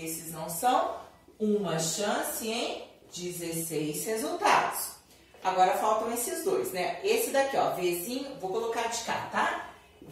não são, uma chance em 16 resultados. Agora faltam esses dois, né? Esse daqui, ó, Vzinho, vou colocar de cá, tá?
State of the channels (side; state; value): both; identical; correlation 1.00